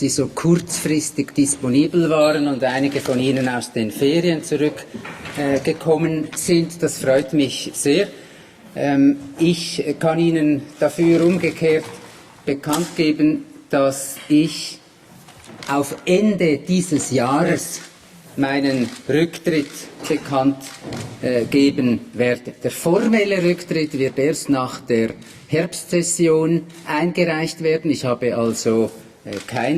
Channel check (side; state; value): both; identical; correlation 1.00